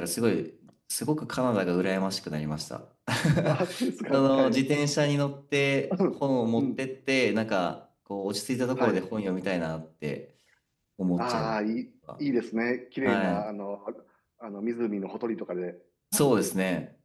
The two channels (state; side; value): identical; both; correlation 1.00